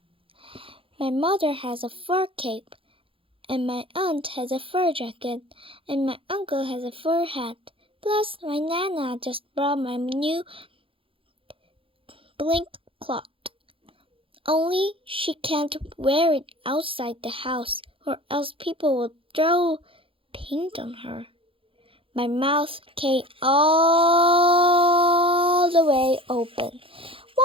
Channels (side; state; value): left; late; 0.26 ms